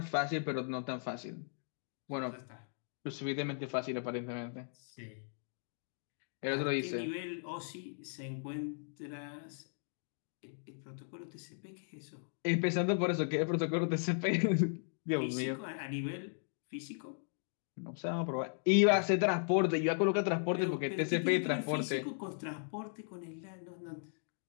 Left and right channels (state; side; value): silent; right; digital silence